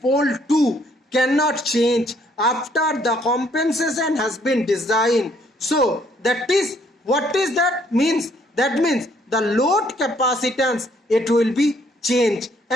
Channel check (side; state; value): both; normal; correlation 0.66